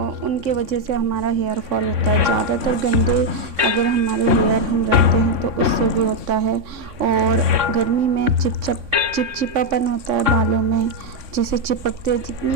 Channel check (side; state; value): left; late; 3.6 ms